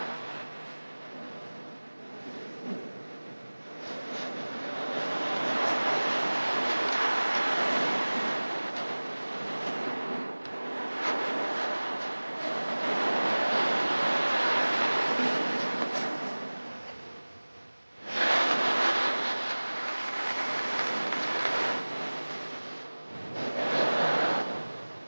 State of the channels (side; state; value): both; inverted; correlation -1.00